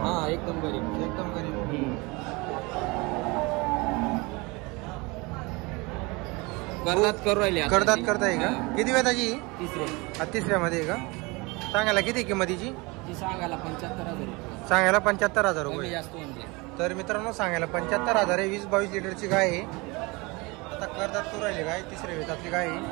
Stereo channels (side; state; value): left; quieter; 25.7 dB